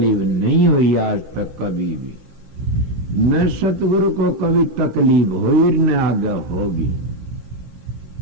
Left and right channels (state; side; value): late; left; 15 ms